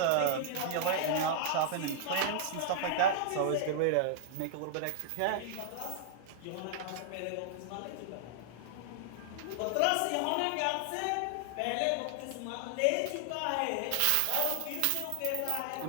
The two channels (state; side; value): different; both; correlation -0.01